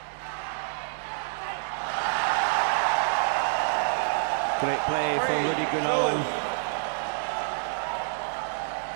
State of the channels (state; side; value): silent; left; digital silence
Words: Great play from Rudy Gunawan.